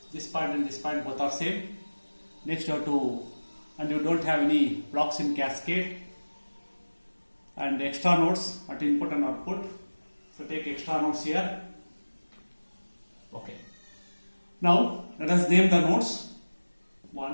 This point and this point both are same. Next you have to, and you don't have any blocks in cascade and extra nodes at input and output. So take extra nodes here. Okay. Now let us name the nodes.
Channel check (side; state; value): both; inverted; correlation -1.00